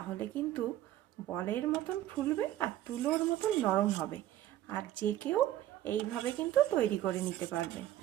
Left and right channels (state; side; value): quieter; left; 13.3 dB